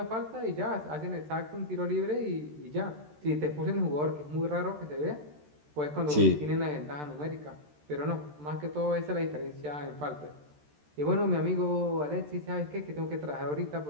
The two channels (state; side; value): late; left; 13 ms